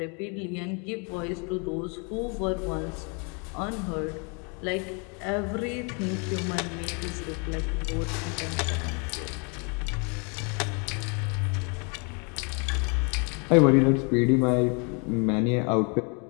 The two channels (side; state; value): right; quieter; 35.0 dB